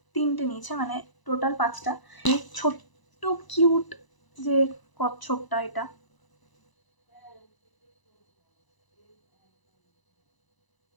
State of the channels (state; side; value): late; right; 1.0 ms